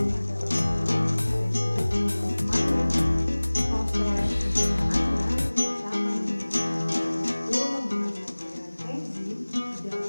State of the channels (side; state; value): both; inverted; correlation -1.00